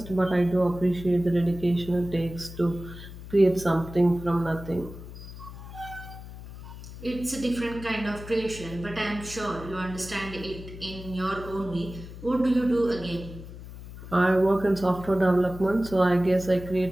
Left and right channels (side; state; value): left; noise; hum, 13 dB below the sound